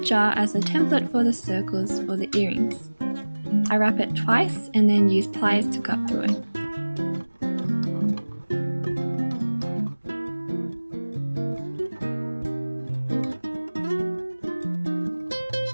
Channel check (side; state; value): both; inverted; correlation -1.00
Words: as a template for the circles for the earrings. I wrap it twice and then use pliers to cut through it.